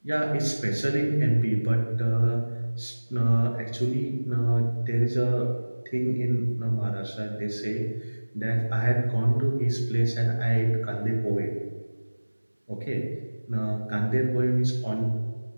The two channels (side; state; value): both; inverted; correlation -1.00